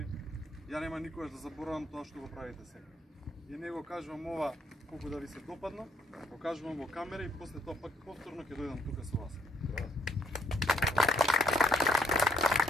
Ја нема никогаш да заборавам тоа што го правите сега. И не го кажувам ова колку да ви се допадно, го кажувам во камера и после тоа пак повторно ќе дојдам тука со вас.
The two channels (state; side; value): normal; both; correlation 0.70